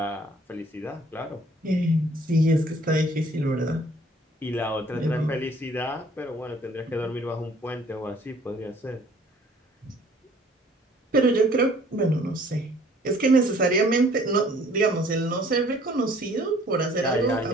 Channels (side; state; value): both; normal; correlation 0.56